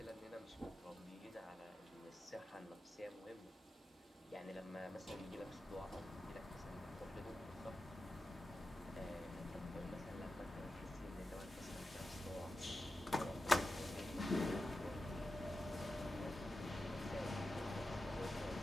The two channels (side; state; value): both; normal; correlation 0.92